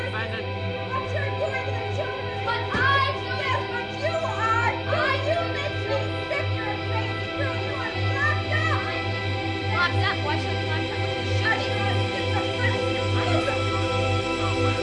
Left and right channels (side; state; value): both; identical; correlation 1.00